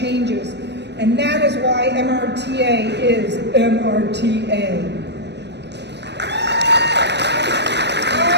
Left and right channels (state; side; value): late; left; 0.50 ms